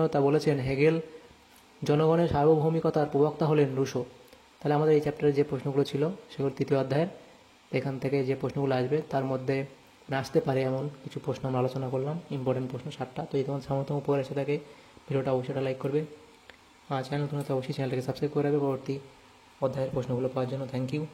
বলেছেন হেগেল। জনগণের সার্বভৌমিকতার প্রবক্তা হলেন রুশো। তাহলে আমাদের এই চ্যাপ্টারে যে প্রশ্নগুলো ছিল সেগুলো তৃতীয় অধ্যায়ের, এখান থেকে যে প্রশ্নগুলো আসবে তার মধ্যে আসতে পারে এমন কিছু প্রশ্ন আমরা আলোচনা করলাম, ইম্পর্টেন্ট প্রশ্ন 7টা। তো এই তোমার সামর্থ্য উপকার এসে থাকে ভিডিওটা অবশ্যই লাইক করবে, চ্যানেল নতুন হলে অবশ্যই চ্যানেলটাকে সাবস্ক্রাইব করে রাখবে পরবর্তী অধ্যায়ের প্রশ্নগুলো পাওয়ার জন্য।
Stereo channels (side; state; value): both; identical; correlation 1.00